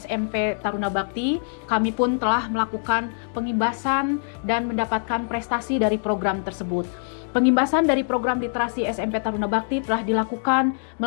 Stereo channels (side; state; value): right; silent; digital silence